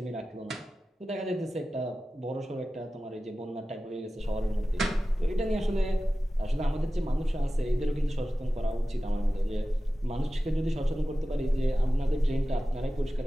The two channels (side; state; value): both; normal; correlation 0.95